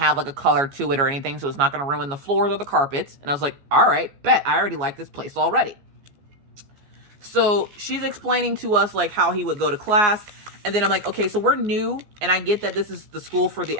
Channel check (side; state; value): left; late; 14 ms